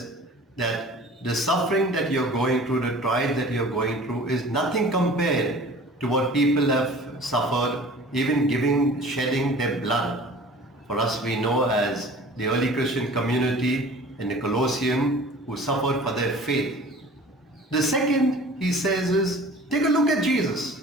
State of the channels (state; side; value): normal; both; correlation 0.44